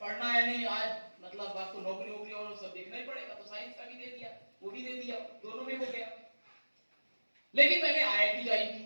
पढ़ना है नहीं, आज मतलब आपको नौकरी और सब देखना ही पड़ेगा, तो साइंस का भी दे दिया, वो भी दे दिया, दोनों में हो गया। लेकिन मैंने आईआईटी ज्वाइन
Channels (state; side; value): inverted; both; correlation -1.00